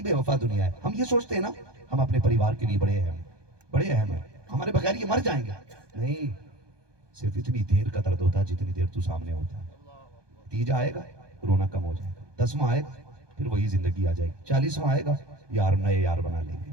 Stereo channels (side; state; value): left; late; 1.2 ms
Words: بے وفا دنیا ہے. ہم یہ سوچتے ہیں نا ہم اپنے پریوار کے لیے بڑے اہم ہیں, ہمارے بغیر یہ مر جائیں گے. نہیں, صرف اتنی دیر کا درد ہوتا ہے جتنی دیر تو سامنے ہوتا ہے. تیجا آئے گا, رونا کم ہو جائے گا. 10واں آئے گا, پھر وہی زندگی آ جائے گی. 40واں آئے گا, یار نئے یار بنا لیں گے.